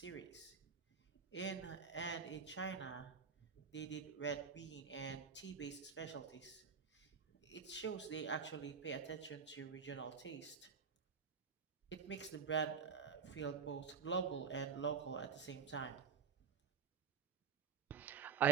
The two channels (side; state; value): left; quieter; 6.1 dB